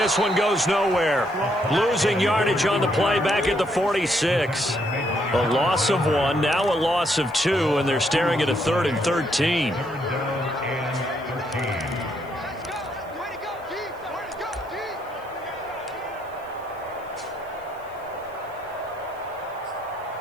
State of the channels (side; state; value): right; noise; hiss, 29 dB below the sound